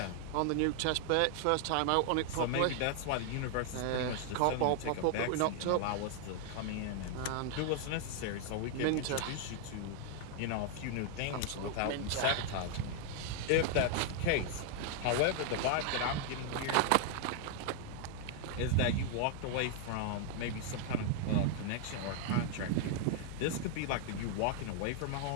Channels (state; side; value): different; both; correlation 0.00